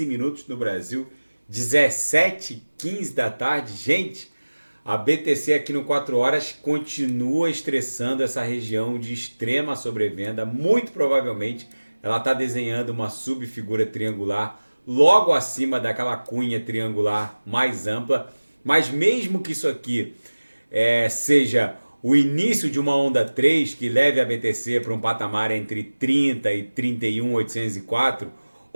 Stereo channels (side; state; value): both; inverted; correlation -1.00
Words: minutos no Brasil, 17h15 da tarde. Gente, a BTC aqui no 4 horas continua estressando essa região de extrema sobrevenda. Muito provavelmente ela está desenhando uma subfigura triangular logo acima daquela cunha triangular mais ampla. Mas mesmo que isso aqui seja o início de uma onda 3 que leve a BTC para um patamar entre 30 e 31.804,